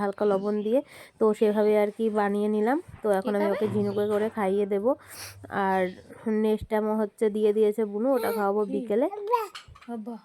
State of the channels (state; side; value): identical; both; correlation 1.00